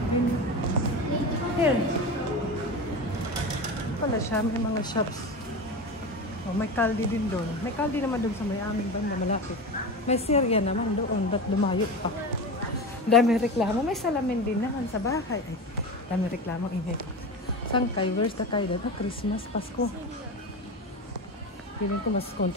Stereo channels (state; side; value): normal; both; correlation 0.25